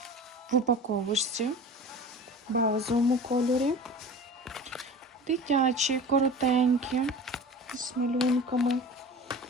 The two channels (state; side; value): normal; both; correlation 0.37